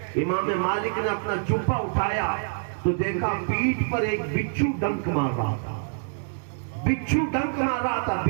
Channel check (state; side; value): silent; left; digital silence